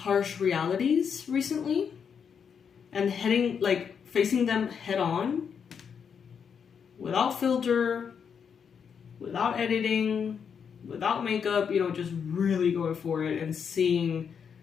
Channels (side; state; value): right; quieter; 7.0 dB